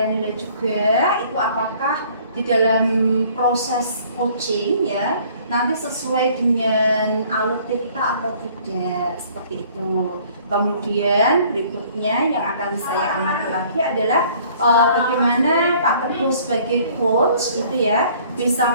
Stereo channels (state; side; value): inverted; both; correlation -0.56